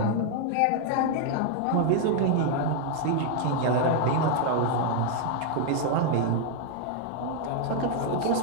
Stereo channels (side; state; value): both; different; correlation 0.00